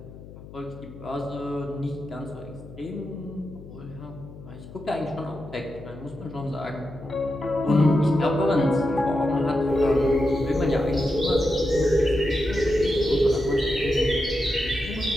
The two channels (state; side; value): noise; left; hum, 16 dB below the sound